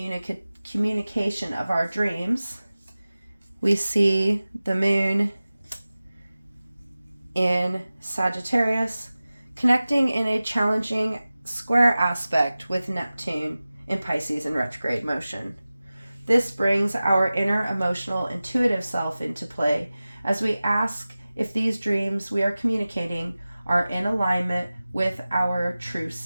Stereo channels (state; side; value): inverted; both; correlation -0.97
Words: of our dreams, we see the moon in Sagittarius connecting in a challenging square aspect with Neptune in Pisces in retrograde motion. This brings our inner emotional intuitive self into play as we ask if these dreams we are communicating are in alignment with our true